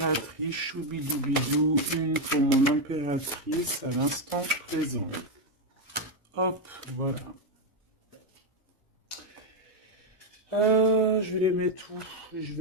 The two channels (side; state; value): both; normal; correlation 0.04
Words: choubidoubidou, une pour mon impératrice à l'instant présent. Hop, voilà. Je vais les mettre où? Je